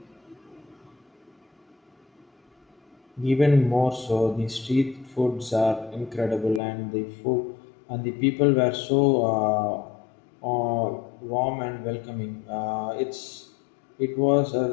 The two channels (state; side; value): drops out; right; at 6.6 s